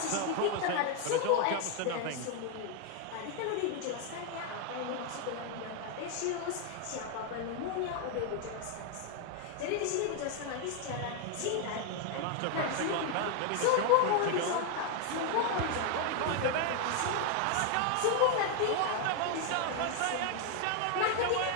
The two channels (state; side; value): different; both; correlation 0.00